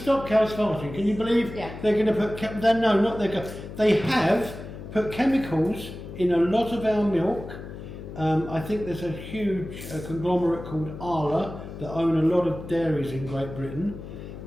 cows farting. Can you believe Yeah. they're going to put? They have put chemicals in a lot of our milk. I think there's a huge conglomerate called Arla that own a lot of dairies in Great Britain,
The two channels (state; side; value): noise; left; hum, 12 dB below the sound